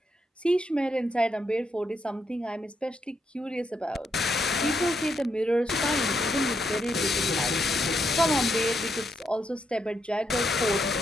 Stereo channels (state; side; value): normal; both; correlation 0.79